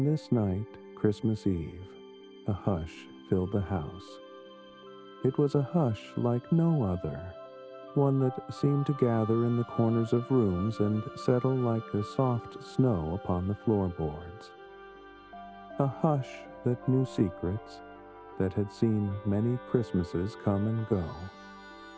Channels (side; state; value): both; identical; correlation 1.00